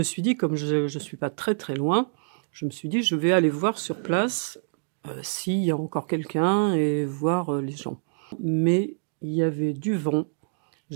suis dit, comme je ne suis pas très très loin, je me suis dit je vais aller voir sur place s'il y a encore quelqu'un et voir les gens. Mais il y avait du vent,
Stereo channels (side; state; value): left; silent; digital silence